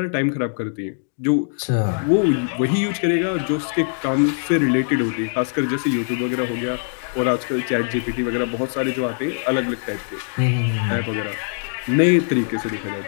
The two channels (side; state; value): right; silent; digital silence